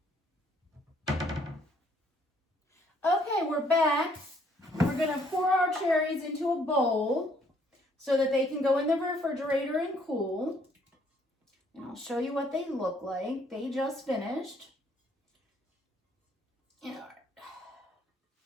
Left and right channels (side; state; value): both; normal; correlation 0.65